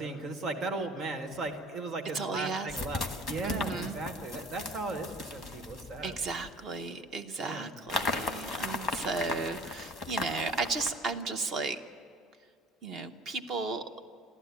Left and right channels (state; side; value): normal; both; correlation 0.46